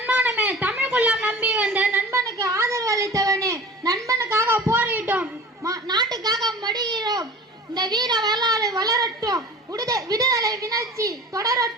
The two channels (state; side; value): normal; both; correlation 0.39